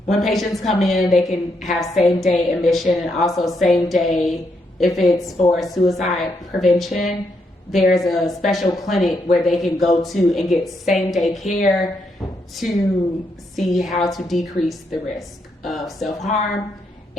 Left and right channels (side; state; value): both; normal; correlation 0.78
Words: when patients come in, they can have same-day admission, and also same-day, if it's for suicide prevention, there's a special clinic where they can go to and get same-day care to see how to decrease the risk of self-harm.